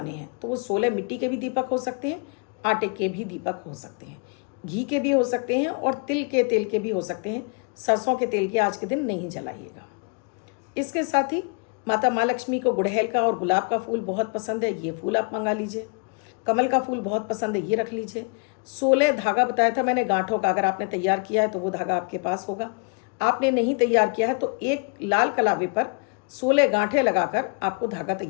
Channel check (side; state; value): right; quieter; 36.0 dB